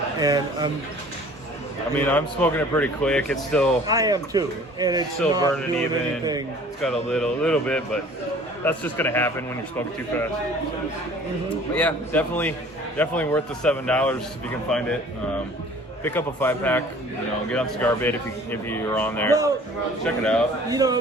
And I'm smoking it pretty quick. It's still... I am too. And it's still not burning doing even. anything. It's got a little bit, but that's just going to happen when you're smoking too fast. But yeah, definitely worth the $7 if you can find it. pick up a 5-pack. Get on Cigar Bit if you're on there. Well, check it out.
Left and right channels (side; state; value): both; normal; correlation 0.49